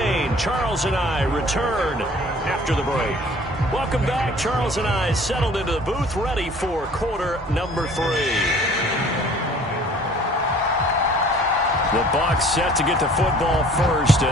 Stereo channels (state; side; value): normal; both; correlation 0.51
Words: Charles and I return after the break. Welcome back. Charles and I settled into the booth, ready for quarter number 3. The Bucs set to get the football first,